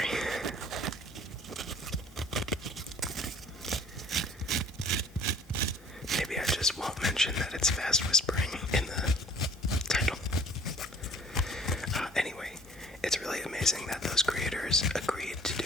it's fast whispering in the title. Anyway, it's really amazing that those creators agreed to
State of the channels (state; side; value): normal; both; correlation 0.53